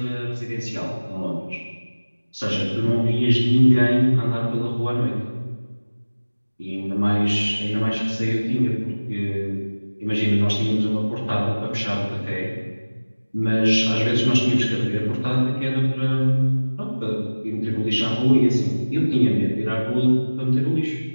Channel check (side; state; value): both; inverted; correlation -1.00